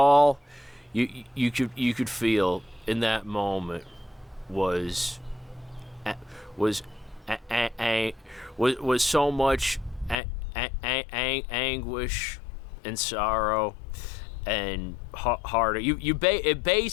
you could feel in that moment was so much anguish and sorrow and heart. It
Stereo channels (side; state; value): right; drops out; at 10.2 s